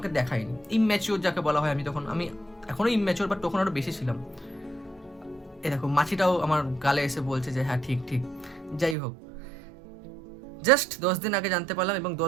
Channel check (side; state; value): left; drops out; at 9.0 s